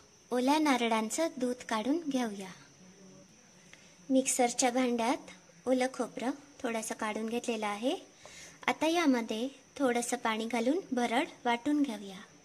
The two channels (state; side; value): identical; both; correlation 1.00